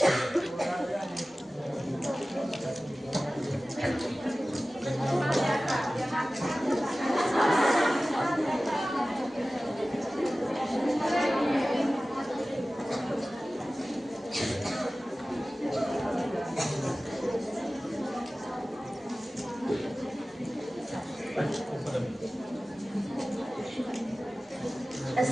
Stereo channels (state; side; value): normal; both; correlation 0.97